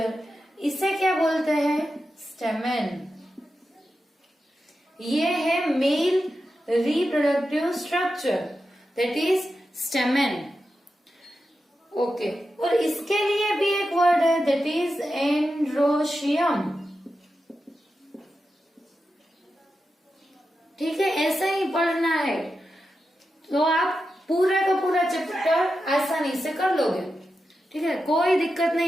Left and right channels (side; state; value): both; normal; correlation 0.90